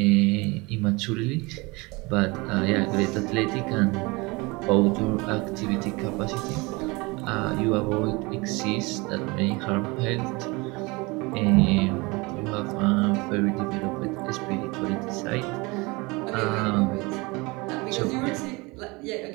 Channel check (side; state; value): left; quieter; 25.4 dB